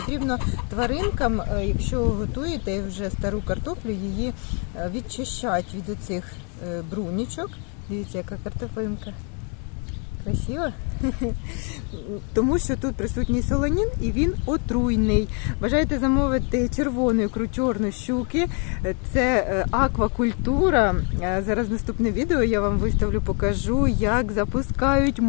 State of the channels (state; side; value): quieter; right; 37.9 dB